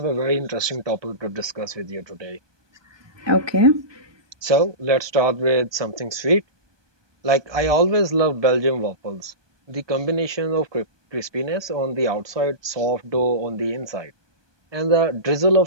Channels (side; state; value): left; late; 1.2 ms